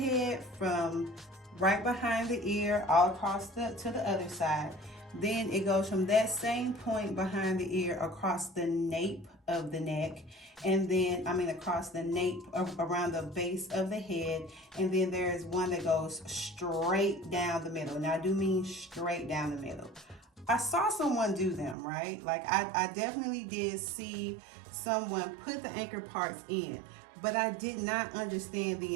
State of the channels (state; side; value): drops out; left; at 21.8 s